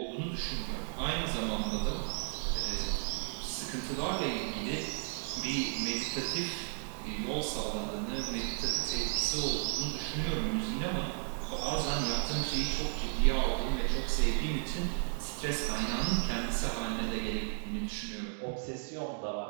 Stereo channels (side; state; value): left; silent; 55 dB below the other